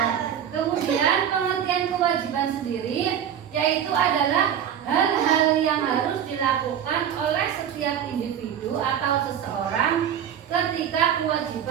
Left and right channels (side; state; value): left; quieter; 9.2 dB